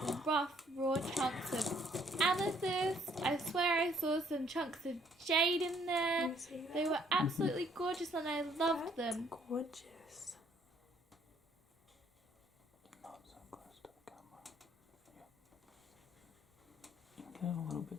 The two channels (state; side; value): normal; both; correlation 0.64